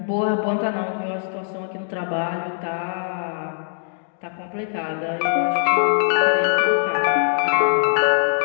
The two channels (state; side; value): silent; right; digital silence